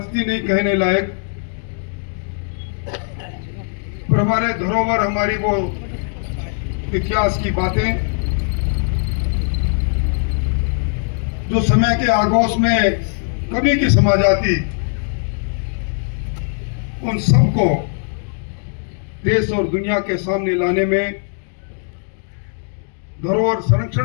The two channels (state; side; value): silent; right; 60 dB below the other